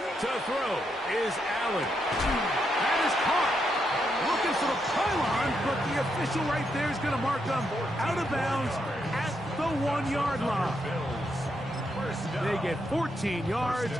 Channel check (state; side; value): normal; both; correlation 0.80